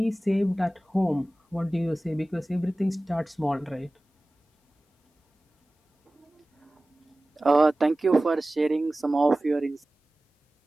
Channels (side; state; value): both; normal; correlation 0.97